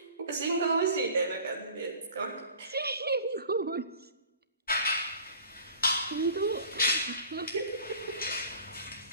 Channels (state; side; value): inverted; both; correlation -0.45